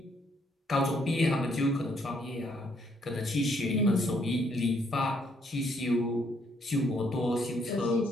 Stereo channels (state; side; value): normal; both; correlation 0.70